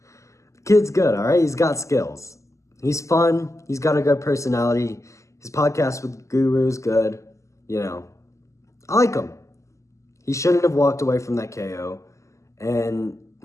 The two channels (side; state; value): right; late; 0.15 ms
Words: Kid's good, all right? He's got skills. He's fun. He's got a good personality. His podcast with Guru is good. You know, I like him. He shouldn't have walked away from that KO. And